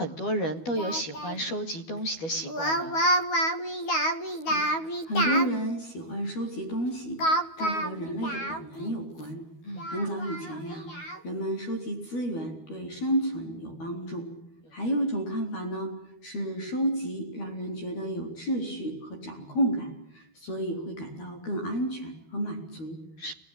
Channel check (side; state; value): right; late; 12 ms